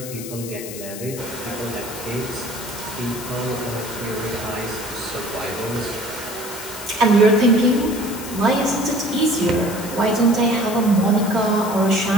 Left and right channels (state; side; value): noise; left; hiss, 11 dB below the sound